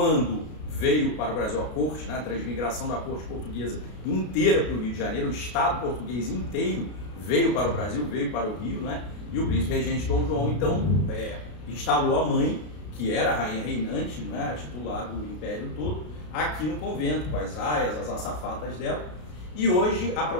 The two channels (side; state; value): right; late; 33 ms